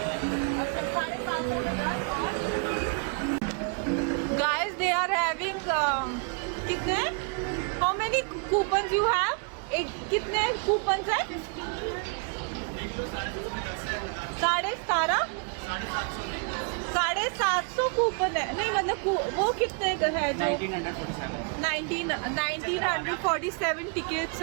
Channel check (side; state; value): left; quieter; 38.7 dB